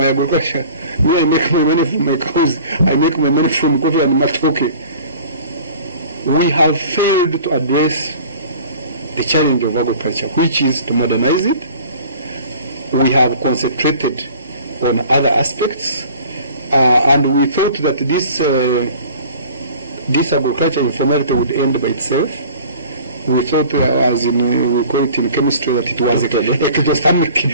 agriculture. Me, I make my money from my cows. I make my money from coffee and matoke. We have failed to address the challenge of agriculture, which is to modernize it. We have concentrated on other aspects. And we thought that this agriculture informality would end by itself. We thought, as in we call it in chemistry, that it was ectothermic,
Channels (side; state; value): both; inverted; correlation -0.46